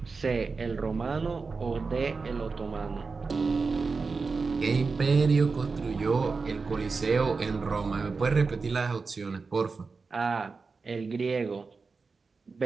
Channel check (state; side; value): quieter; left; 4.5 dB